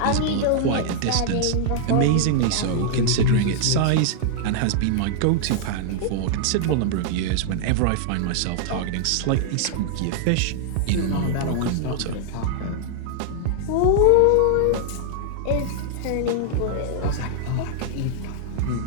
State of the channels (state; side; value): different; both; correlation -0.01